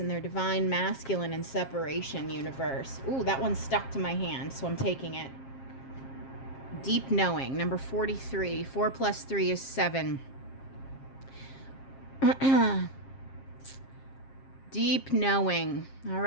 their divine masculine and separation universe. Ooh, that one stuck to my hand, so I'm taking it. Deep knowing, number 43. 4 plus 3 is 7. Deep knowing. All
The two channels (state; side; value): late; right; 7.5 ms